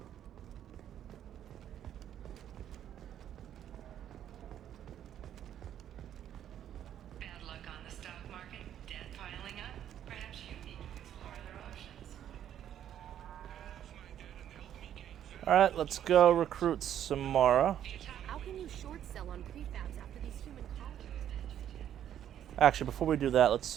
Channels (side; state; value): left; quieter; 10.4 dB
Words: Bad luck on the stock market, debt piling up. Perhaps you need to explore other options. Alright, let's go recruit Samara. How can you short sell on prefabs after these human colonies? Actually, before we do that, let's